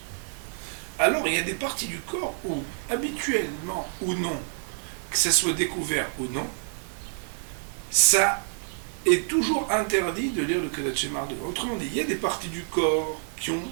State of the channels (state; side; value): silent; left; 60 dB below the other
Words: alors il y a des parties du corps où, habituellement ou non, que ça soit découvert ou non, ça est toujours interdit de lire le Kriyat Shema devant. Autrement dit, il y a des parties du corps qui ont